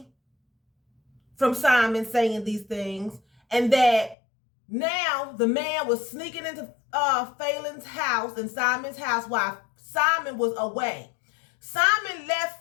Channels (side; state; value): right; drops out; at 4.2 s